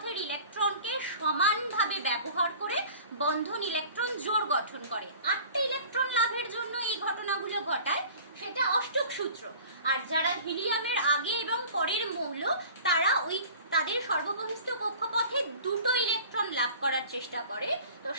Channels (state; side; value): inverted; both; correlation -0.44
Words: ইলেকট্রনকে সমানভাবে ব্যবহার করে বন্ধন ইলেকট্রন জোড় গঠন করে। 8টি ইলেকট্রন লাভের জন্য এই ঘটনাগুলো ঘটায়, সেটা অষ্টক সূত্র। আর যারা হিলিয়ামের আগে এবং পরের মৌল, তারা তাদের সর্ববহিস্থ কক্ষপথে 2টো ইলেকট্রন লাভ করার চেষ্টা করে, তো